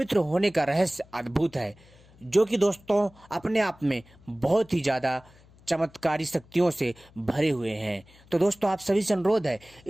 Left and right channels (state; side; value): noise; left; hum, 26 dB below the sound